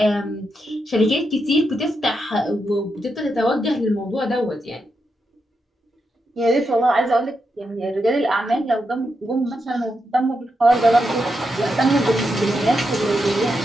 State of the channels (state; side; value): normal; both; correlation 0.84